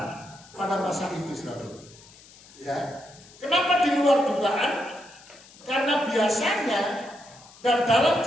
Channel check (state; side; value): noise; left; hiss, 23 dB below the sound